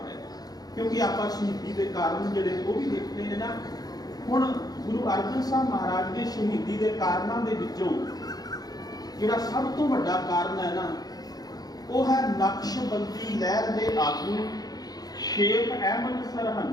ਗਏ। ਕਿਉਂਕਿ ਆਪਾਂ ਸ਼ਹੀਦੀ ਦੇ ਕਾਰਨ ਜਿਹੜੇ ਉਹ ਵੀ ਦੇਖਦੇ ਨੇ ਨਾ। ਹੁਣ ਗੁਰੂ ਅਰਜਨ ਸਾਹਿਬ ਮਹਾਰਾਜ ਦੇ ਸ਼ਹੀਦੀ ਦੇ ਕਾਰਨਾਂ ਦੇ ਵਿੱਚੋਂ ਜਿਹੜਾ ਸਭ ਤੋਂ ਵੱਡਾ ਕਾਰਨ ਹੈ ਨਾ, ਉਹ ਹੈ ਨਕਸ਼ਬੰਦੀ ਲਹਿਰ ਦੇ ਆਗੂ ਸ਼ੇਖ ਅਹਿਮਦ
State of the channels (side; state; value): right; late; 0.19 ms